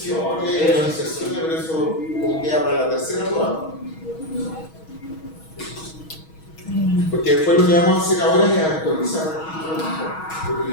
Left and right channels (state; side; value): late; right; 6.3 ms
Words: las inserciones, pero eso como queda para la tercera prueba. Porque después lo que vamos a hacer ahora es actualizar,